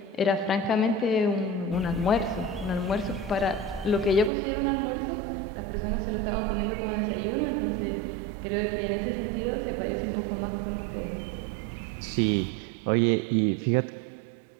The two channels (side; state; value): left; drops out; at 4.3 s